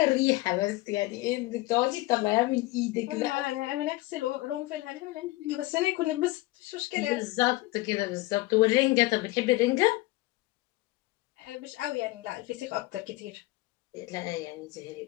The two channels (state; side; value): quieter; right; 20.0 dB